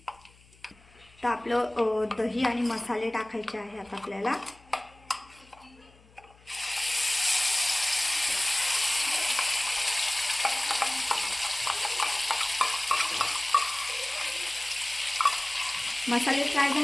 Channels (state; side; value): noise; left; hum, 27 dB below the sound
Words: तर आपलं दही आणि मसाले टाकायचे आहे आता आपल्याला। मसाले फ्राय